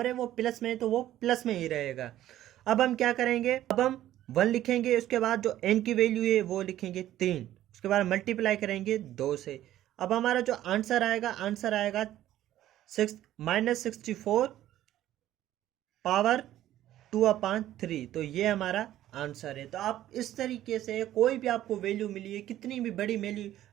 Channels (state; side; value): quieter; left; 13.2 dB